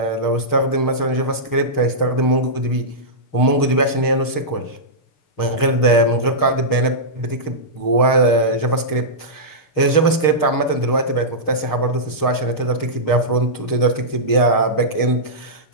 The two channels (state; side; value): late; right; 6.5 ms